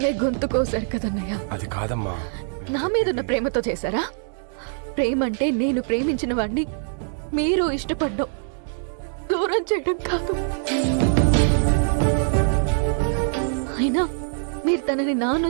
గొంతు కోసారు కదన్నయ్య. అది కాదమ్మా. నా మీదున్న ప్రేమతో చేశారా? ప్రేమంటే నేను ప్రేమించిన వాడిని మీరు ఇష్టపడ్డం, దూరం చేయడం కాదు. అయినా మీరు తనని నా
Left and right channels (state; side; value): silent; left; 63 dB below the other